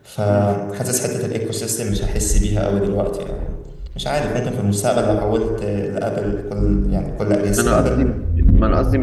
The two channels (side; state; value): both; identical; correlation 1.00